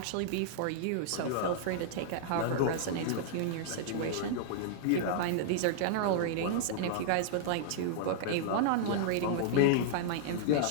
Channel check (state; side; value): different; both; correlation -0.01